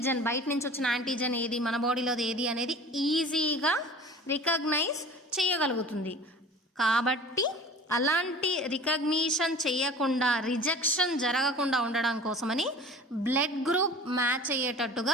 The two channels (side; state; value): both; normal; correlation 0.42